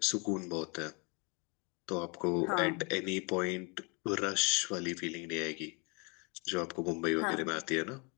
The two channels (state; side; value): quieter; right; 31.9 dB